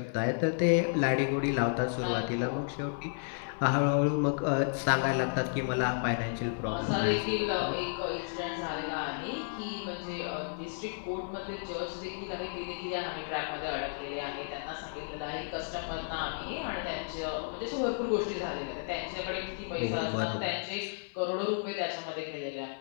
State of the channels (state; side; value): silent; right; 56 dB below the other